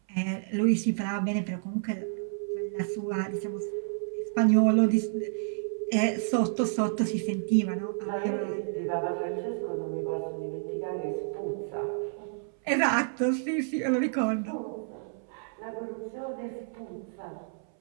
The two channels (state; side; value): silent; left; 58 dB below the other